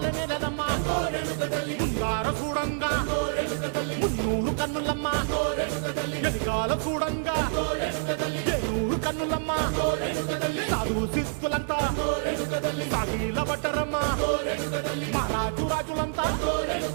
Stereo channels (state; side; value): silent; left; digital silence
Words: నెలనమ్మా ముందార చూడంగా మున్నూరు కన్నులమ్మా ఎనకాల చూడంగా ఏనూరు కన్నులమ్మా సాధువు సిద్ధులంతా సాగిల బట్టరమ్మా మహారాజు రాజులంతా